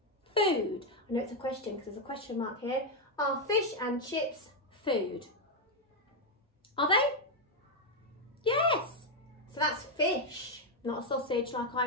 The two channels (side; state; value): both; normal; correlation 0.02